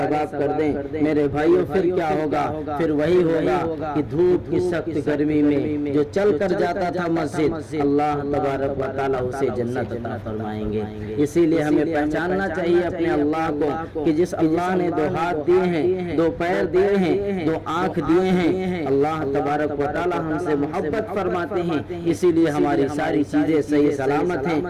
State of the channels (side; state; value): both; identical; correlation 1.00